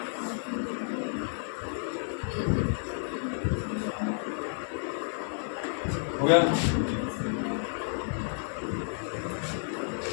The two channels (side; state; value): right; silent; digital silence